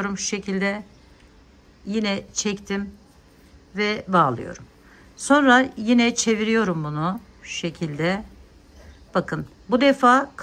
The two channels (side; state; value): both; identical; correlation 1.00